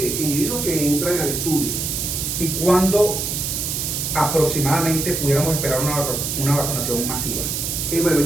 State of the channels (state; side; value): noise; right; hiss, 2 dB below the sound